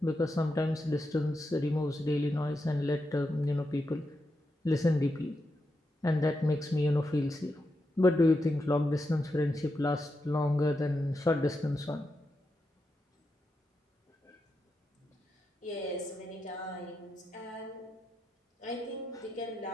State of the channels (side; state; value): both; normal; correlation 0.86